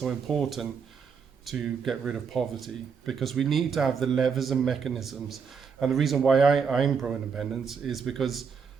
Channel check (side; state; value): left; quieter; 6.1 dB